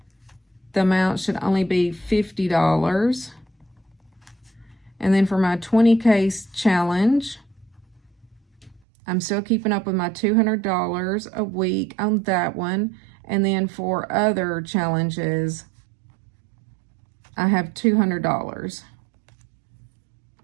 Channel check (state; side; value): drops out; left; at 8.8 s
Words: the amount should only be $50. And then for my 20K challenge, I'm still keeping up with my $200 a week on that one. And then for other challenges, I have $200.